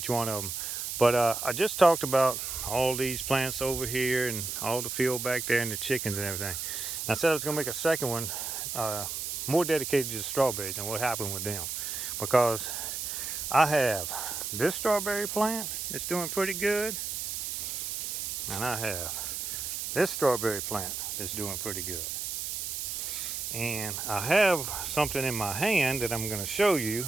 one of them. But I just talked about all these plants over here and all the field back there and the chickens and everything. And I said I was going to make a second one more dedicated to the strawberries and what happened with them. Because I have this strawberry plant that's doing pretty good. And I have this strawberry plant that's doing pretty good. And I have something in my hand that I'm going to show you, and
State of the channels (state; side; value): noise; right; hiss, 4 dB below the sound